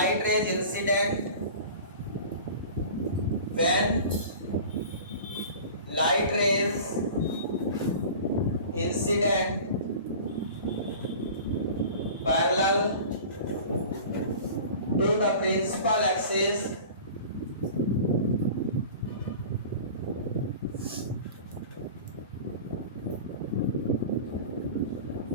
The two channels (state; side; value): inverted; both; correlation -0.39